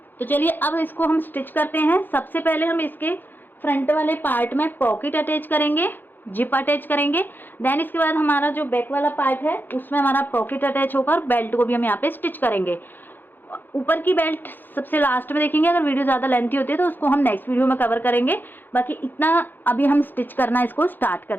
तो चलिए अब इसको हम स्टिच करते हैं। सबसे पहले हम इसके फ्रंट वाले पार्ट में पॉकेट अटैच करेंगे, जिप अटैच करेंगे। देन इसके बाद हमारा जो बैक वाला पार्ट है उसमें हमारा पॉकेट अटैच होगा और बेल्ट को भी हम यहाँ पे स्टिच करेंगे। ऊपर की बेल्ट सबसे लास्ट में देखेंगे, अगर वीडियो ज़्यादा लेंथी होती है तो उसको हम नेक्स्ट वीडियो में कवर करेंगे। बाकी इतना अभी हम स्टिच करना इसको स्टार्ट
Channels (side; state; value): right; late; 0.092 ms